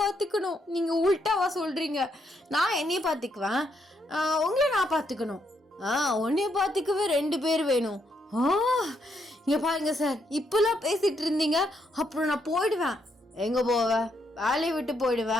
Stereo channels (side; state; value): both; normal; correlation 0.76